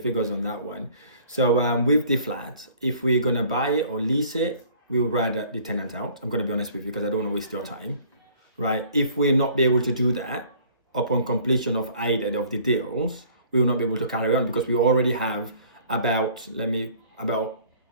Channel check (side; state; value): both; inverted; correlation -0.53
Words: on that one. So with the flat, if we're gonna buy it or lease it, we would rather the tenant out. I'm gonna be honest with you because I don't want to waste your time, right? If we're not be able to do that upon completion of either of the deals, we will not be able to carry on because we already have about